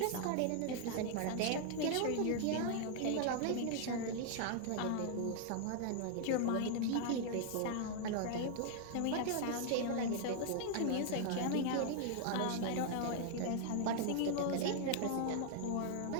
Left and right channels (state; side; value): different; both; correlation 0.00